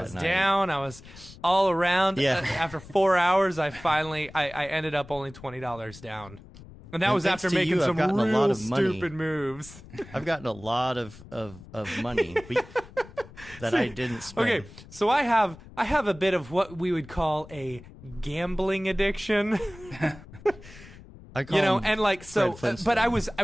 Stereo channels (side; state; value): left; noise; rumble, 19 dB below the sound